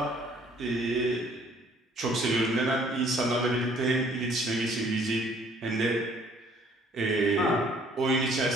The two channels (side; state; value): both; normal; correlation 0.59